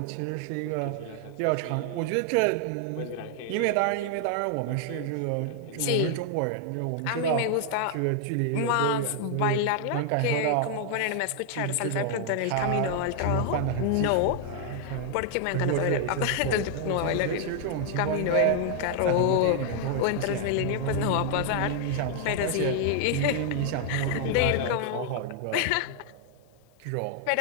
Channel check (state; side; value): different; both; correlation 0.00